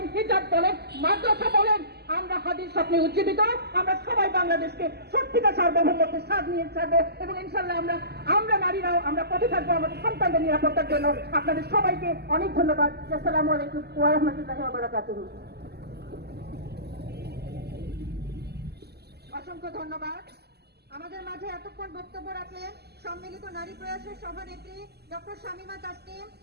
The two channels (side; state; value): left; late; 0.47 ms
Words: হিজাব বলেন, মাদ্রাসা বলেন, আমরা হাদির স্বপ্নে উজ্জীবিত। আমরা সবাই বাংলাদেশকে সত্যিকার সার্বভৌমত্বের স্বাদ নিয়ে ছাড়বো এবং ইনশাল্লাহ আমরা নারীরাও আমরা পথে থাকবো আমাদের সন্তানদের নিরাপত্তার জন্য। আপনাদের সবাইকে অনেক ধন্যবাদ। আসসালামু আলাইকুম ওয়া রাহমাতুল্লাহি ওয়া বারাকাতুহু। অসংখ্য ধন্যবাদ। আমাদের মাঝে এতক্ষণ বক্তব্য রাখলেন সম্মিলিত নারী প্রয়াসের সভানেত্রী ডক্টর শামীমা তাসনিম,